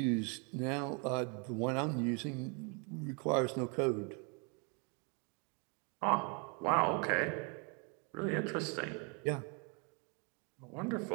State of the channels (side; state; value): left; quieter; 34.4 dB